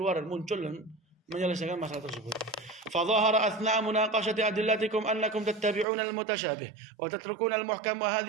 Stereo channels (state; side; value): drops out; left; at 5.9 s